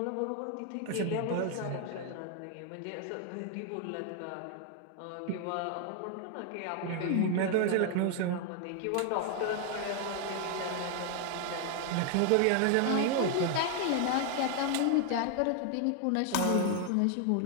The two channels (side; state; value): both; different; correlation 0.00